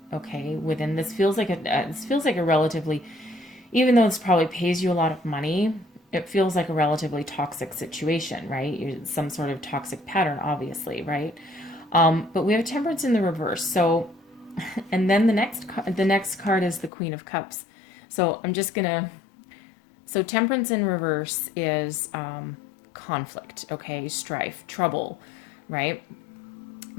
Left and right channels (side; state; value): right; drops out; at 16.9 s